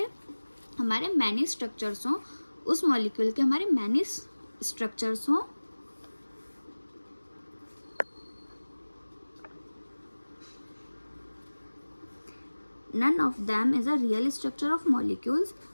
हमारे मैनी स्ट्रक्चर्स हों, उस मॉलिक्यूल के हमारे मैनी स्ट्रक्चर्स हों, none of them is a real structure of molecules,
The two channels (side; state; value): both; inverted; correlation -1.00